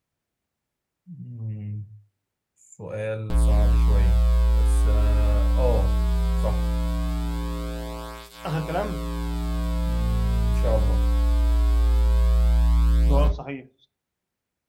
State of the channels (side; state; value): both; identical; correlation 1.00